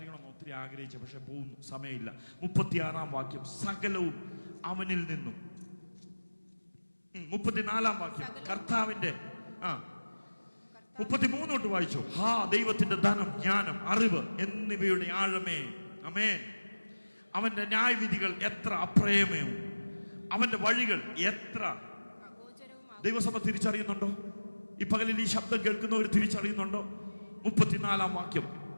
ഒത്തിരി ആഗ്രഹിച്ചു, പക്ഷെ പോകുന്നു, സമയമില്ല. 36-ാം വാക്യം, സകലവും അവനിൽ നിന്നും. 34-ാം വാക്യം, കർത്താവിന്റെ 33 തൊട്ട് വായിച്ചു. ദൈവത്തിന്റെ ധനം, ജ്ഞാനം, അറിവ് എന്നിവയുടെ ആഴമേ. ആമേൻ. അവന്റെ ന്യായവിധികൾ എത്ര അപ്രയമേവും, അവന്റെ വഴികൾ എത്ര അഗോചരവുമാകുന്നു. ദൈവസഭ തിരിച്ചറിയുന്നുണ്ടോ? ഈ പകലിൽ ഈ ശബ്ദം കേൾക്കുന്നവർ തിരിച്ചറിയുന്നുണ്ടോ? 34-ാം വാക്യം,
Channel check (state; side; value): inverted; both; correlation -1.00